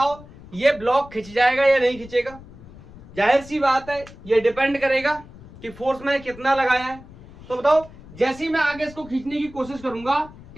ये ब्लॉक खींच जाएगा या नहीं खींचेगा? जाहिर सी बात है, ये डिपेंड करेगा कि फोर्स मैंने कितना लगाया है. तो बताओ, जैसे ही मैं आगे इसको खींचने की कोशिश करूंगा,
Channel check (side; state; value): left; noise; rumble, 19 dB below the sound